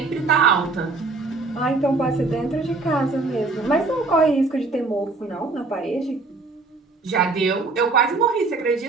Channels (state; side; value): quieter; left; 3.7 dB